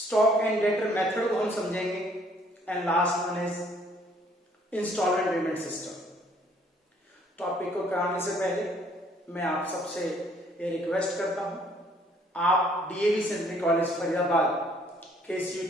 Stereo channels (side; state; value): both; normal; correlation 0.62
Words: एंड डेटर मेथड को हम समझेंगे, and last one is installment payment system. Topic को कराने से पहले मैं आप सबसे ये रिक्वेस्ट करता हूं, आप डीएवी सेंट्रल कॉलेज फरीदाबाद के इस